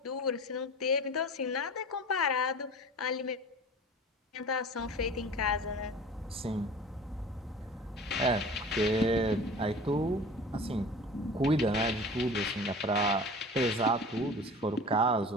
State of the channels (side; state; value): both; normal; correlation 0.40